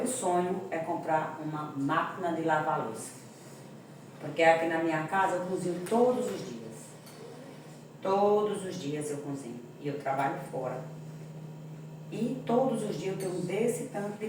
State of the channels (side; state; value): both; identical; correlation 1.00